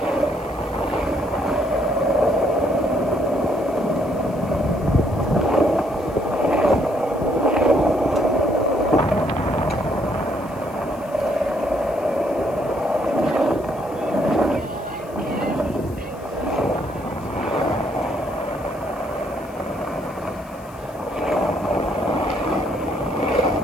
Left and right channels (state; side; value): noise; left; hiss, 25 dB below the sound